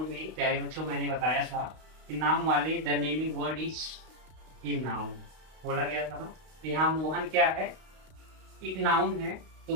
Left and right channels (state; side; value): late; left; 32 ms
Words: में प्यारे बच्चों मैंने बताया था कि नाम वाले the naming word is in noun बोला गया था ना। तो यहाँ मोहन क्या है, एक नाउन है।